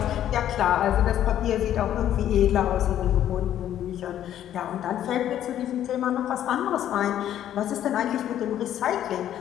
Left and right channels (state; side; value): quieter; right; 11.2 dB